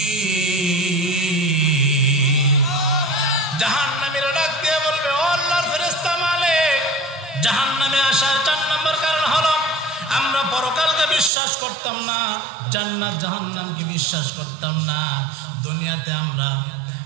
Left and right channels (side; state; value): left; drops out; at 11.3 s